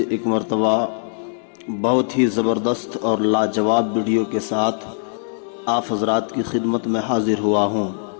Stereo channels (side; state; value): right; silent; digital silence